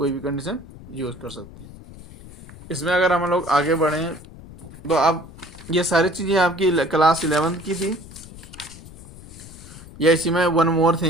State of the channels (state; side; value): noise; left; rumble, 17 dB below the sound